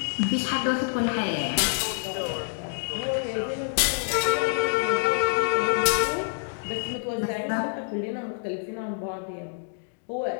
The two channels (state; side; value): silent; right; digital silence